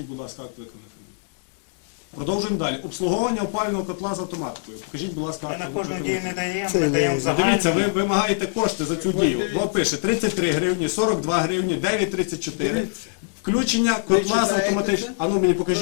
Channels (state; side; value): silent; right; 63 dB below the other